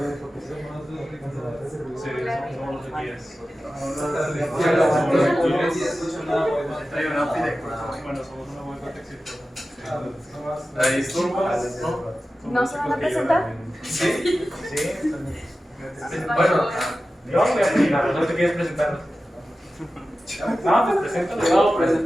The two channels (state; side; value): normal; both; correlation 0.94